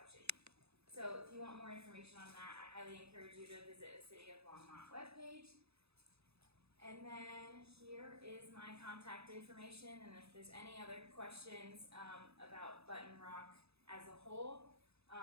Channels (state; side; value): late; left; 0.79 ms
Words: So if you want more information on that, I highly encourage you to visit the City of Longmont webpage. And then here is my contact information, and if there's any other questions about Button Rock as a whole,